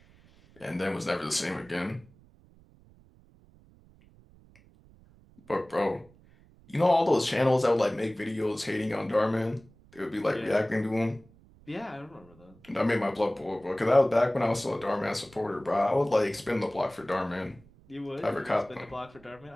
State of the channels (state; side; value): noise; right; rumble, 27 dB below the sound